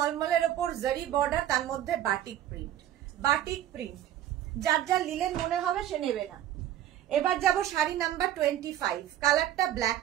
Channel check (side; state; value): left; quieter; 12.0 dB